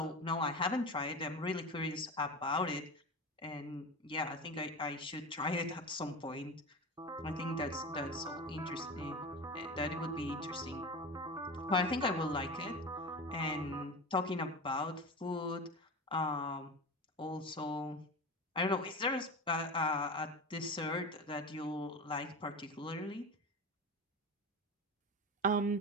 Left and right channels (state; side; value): normal; both; correlation 0.27